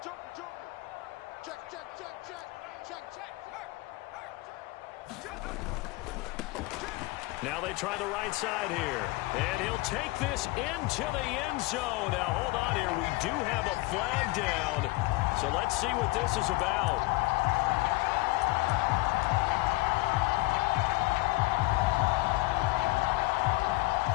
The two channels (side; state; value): right; quieter; 22.1 dB